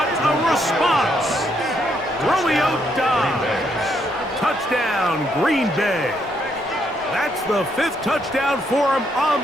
a response. Romeo Dobbs. Touchdown, Green Bay. That's the 5th touchdown for him on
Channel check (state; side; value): normal; both; correlation 0.74